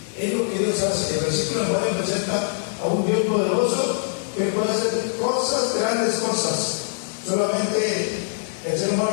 Es lo que Dios hace. El versículo 9 presenta a un Dios poderoso que puede hacer cosas, grandes cosas. Solamente el ser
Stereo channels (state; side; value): silent; right; digital silence